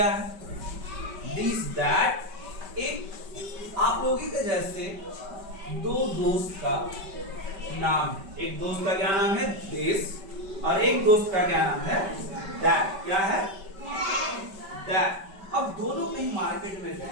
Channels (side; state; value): left; late; 5.2 ms